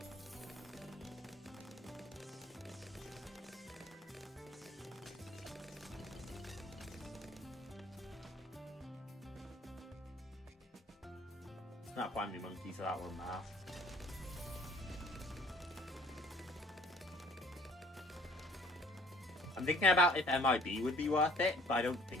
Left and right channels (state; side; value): normal; both; correlation 0.55